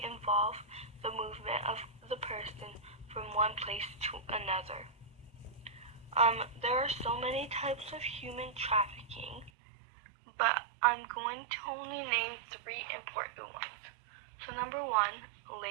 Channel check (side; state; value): left; drops out; at 9.5 s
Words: involve the movement of the person from one place to another. There are so many types of human trafficking, but I'm going to only name three important ones. So number one,